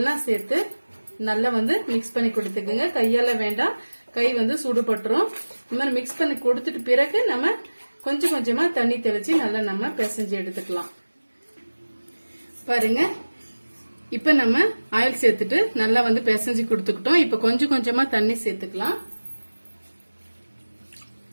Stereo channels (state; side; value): inverted; both; correlation -1.00